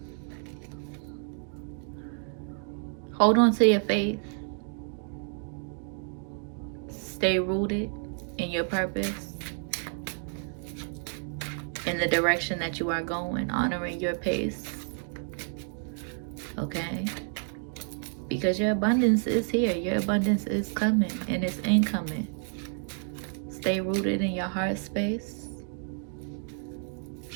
hold on to your faith. Stay rooted in your purpose, in the direction that you are going, honoring your pace. Okay? Because your abundance is here. Your abundance is coming and it's incoming. Stay rooted in your heart space.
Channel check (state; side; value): silent; left; 56 dB below the other